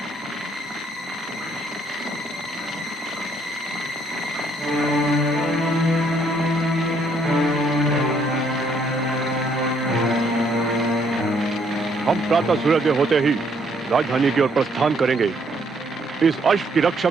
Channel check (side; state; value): both; normal; correlation 0.68